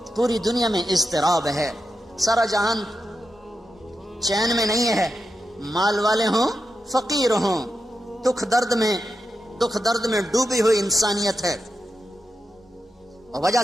پوری دنیا میں اضطراب ہے، سارا جہان چین میں نہیں ہے، مال والے ہوں فقیر ہوں، دکھ درد میں ڈوبی ہوئی انسانیت ہے، اور وجہ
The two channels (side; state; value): both; normal; correlation 0.88